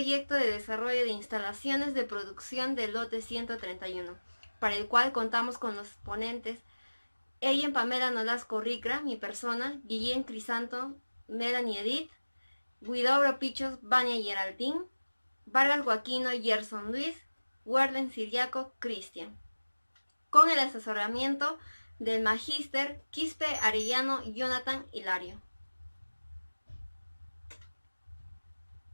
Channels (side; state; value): both; inverted; correlation -1.00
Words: de desarrollo de instalaciones de producción del lote 131, para el cual contamos con los ponentes Ellen Pamela Nolasco Ricra, mi persona, Guillén Crisanto, Melanie Edith, Guidobro Pichos, Vania Geraldine, Vargas Joaquino, Gerson Luis, Warden Siriaco, Cristian, con el asesoramiento del Magíster Quispe Arellano Jonathan Hilario.